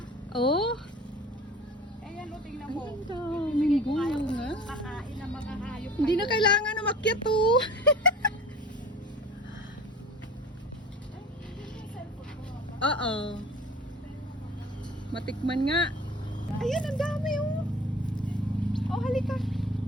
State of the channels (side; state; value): both; normal; correlation 0.42